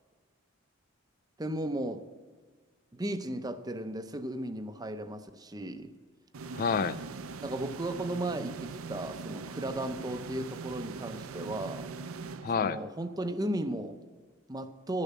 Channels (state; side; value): normal; both; correlation 0.42